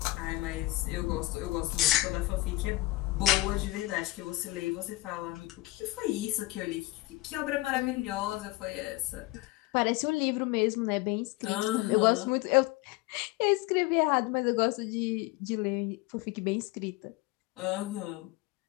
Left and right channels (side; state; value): right; quieter; 19.6 dB